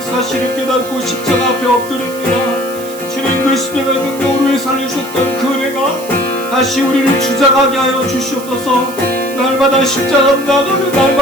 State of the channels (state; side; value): noise; right; hiss, 15 dB below the sound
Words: 사실을 깨닫고 십자가 앞에 엎드립니다. 주님, 그 십자가의 능력으로 우리를 살려주셨던 그 은혜가 다시 우리를 주장하게 하여 주시옵소서. 날마다 십자가 앞 나가며